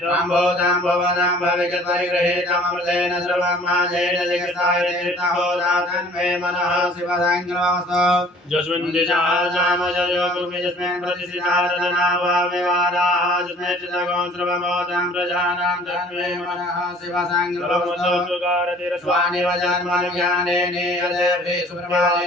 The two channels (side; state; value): both; normal; correlation 0.51